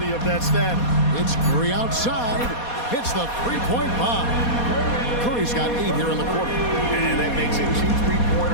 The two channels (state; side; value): late; right; 4.2 ms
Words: of that status. It's Curry outside. Hits the three-point bomb. Curry's got 8 here in the quarter. And that makes it 2